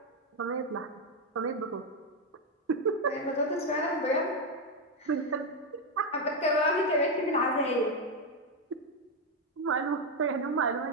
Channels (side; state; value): both; normal; correlation 0.05